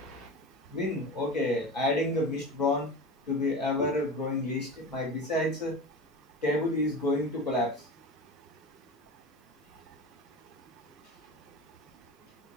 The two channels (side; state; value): both; normal; correlation 0.30